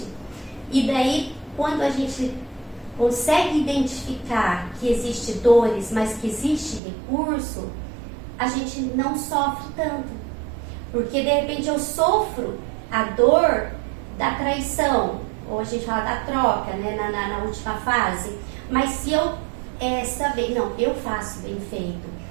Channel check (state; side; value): drops out; left; at 6.8 s